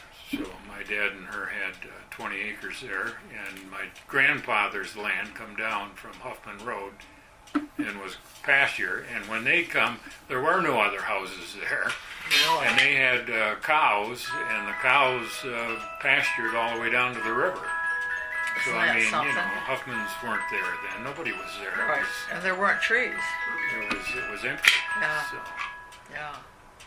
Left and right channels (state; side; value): identical; both; correlation 1.00